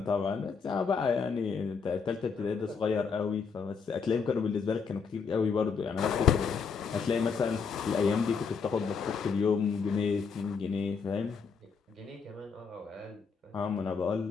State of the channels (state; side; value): quieter; right; 5.6 dB